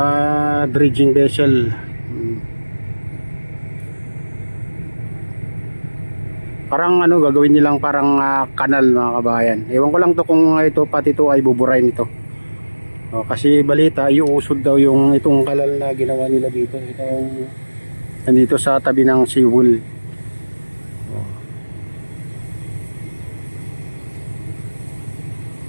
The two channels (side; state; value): both; inverted; correlation -1.00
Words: dredging vessel. Parang gagawin nilang parang kanal mga kabayan. Ewan ko lang to kung pati ito ay buburain ito. Kasi balita iuusod daw itong kanal na ginawa nila dito. Nandito sa tabi ng seawall.